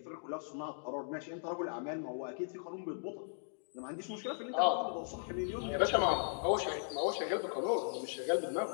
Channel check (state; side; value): silent; right; digital silence